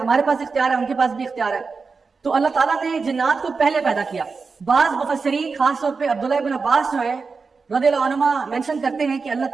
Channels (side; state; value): left; quieter; 4.7 dB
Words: پاس اختیار ہے، ان کے پاس بھی اختیار ہے. تو اللہ تعالیٰ نے جنات کو پہلے پیدا کیا. بعض مفسرین خاص طور پہ عبداللہ ابن عباس جو ہے رضی اللہ عنہما مینشن کرتے ہیں کہ اللہ